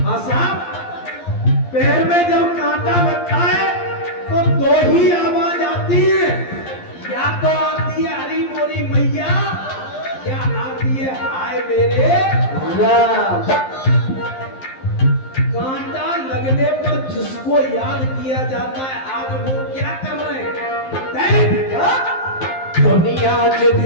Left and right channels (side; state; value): right; late; 11 ms